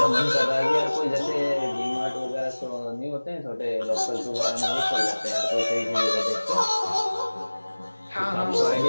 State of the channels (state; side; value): inverted; both; correlation -1.00